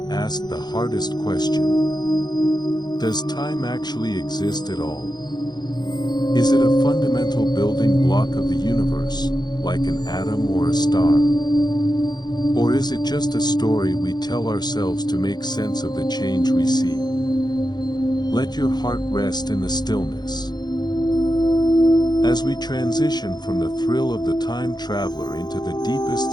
asked the hardest question. Does time actually exist at all? Is it a fundamental building block of the universe, like an atom or a star? Or is it just a story we tell ourselves to make sense of the change we see? Let your heart rest in the stillness. As we transition from the thrill of the time traveler into the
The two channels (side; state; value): right; late; 0.20 ms